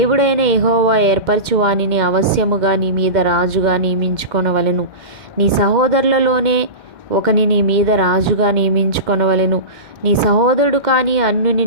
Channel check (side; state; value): left; late; 2.1 ms